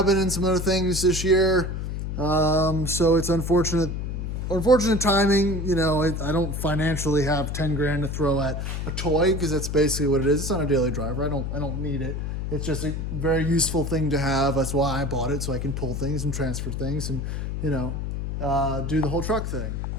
and some other things this year. So it's unfortunate timing. I don't financially have 10 grand to throw at a toy because that's basically what it is. It's not a daily driver. I don't need it. It's just a very useful thing to have. That's why I bought it, so I can pull things and transfer things and, do the whole truck thing.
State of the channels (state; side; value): noise; left; hum, 3 dB below the sound